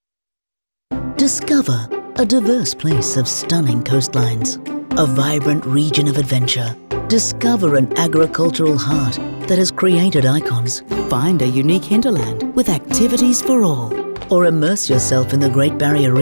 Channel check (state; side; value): inverted; both; correlation -1.00